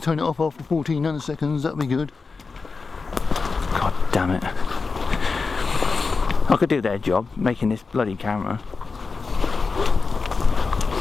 it off after 14 nanoseconds, that'll be good. God damn it. I could do their job, making this bloody camera.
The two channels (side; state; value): right; quieter; 4.5 dB